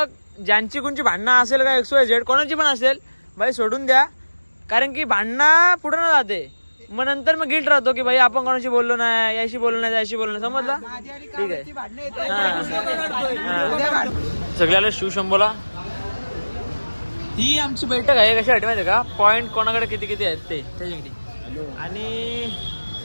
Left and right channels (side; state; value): both; inverted; correlation -1.00